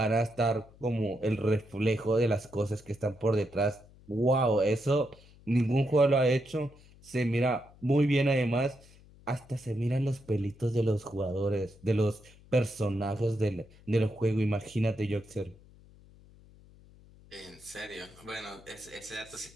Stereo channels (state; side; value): noise; left; hum, 24 dB below the sound